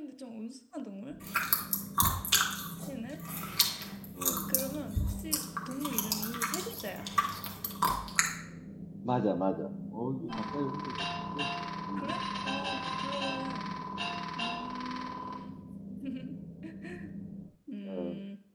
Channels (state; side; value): identical; both; correlation 1.00